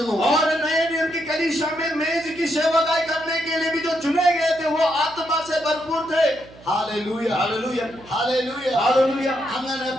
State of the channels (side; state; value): right; noise; hum, 22 dB below the sound